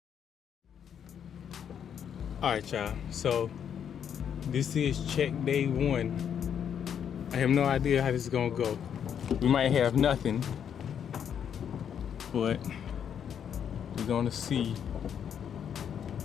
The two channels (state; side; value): quieter; right; 8.4 dB